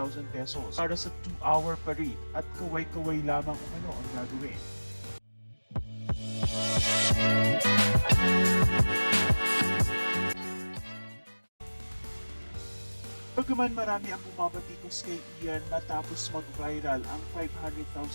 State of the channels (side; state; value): both; inverted; correlation -1.00